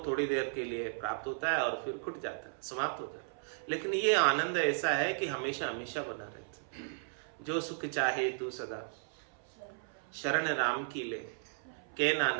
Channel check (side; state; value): left; silent; 54 dB below the other